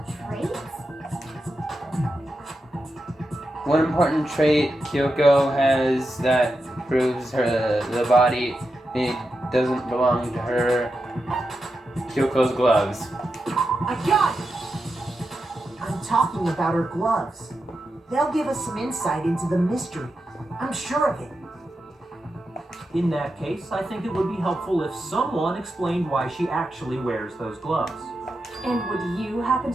traits? One important trait Kyoko has that proves the body it doesn't belong to her. Kyoko's gloves. I got it! I'm talking about her gloves. They'll give us some insight into the mystery. I'm sure of it. In that case, I think it would be helpful if someone explained why she actually wears those gloves. And would you happen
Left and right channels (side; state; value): both; normal; correlation 0.88